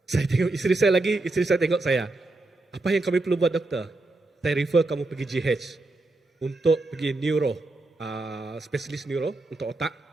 Saya tengok isteri saya tengok saya. Apa yang kami perlu buat doktor? Saya refer kamu pergi GH untuk pergi neuro, spesialis neuro untuk otak.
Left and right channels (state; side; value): quieter; left; 3.0 dB